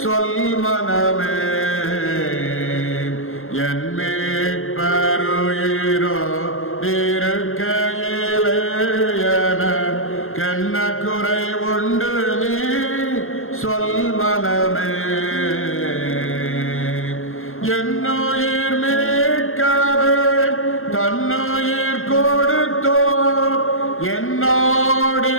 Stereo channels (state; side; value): late; right; 0.61 ms